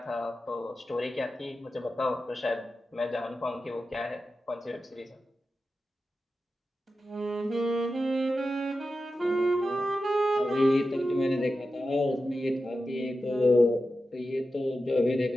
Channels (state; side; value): normal; both; correlation 0.92